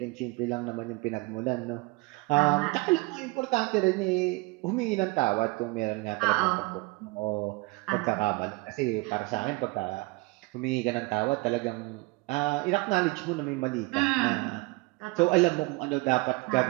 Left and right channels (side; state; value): left; quieter; 24.7 dB